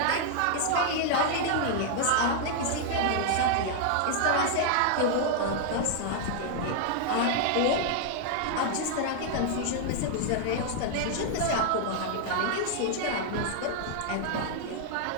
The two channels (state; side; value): different; both; correlation 0.00